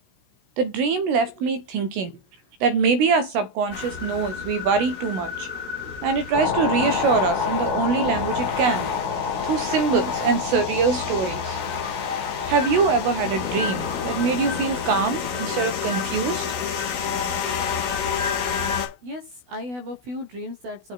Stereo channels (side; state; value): left; late; 16 ms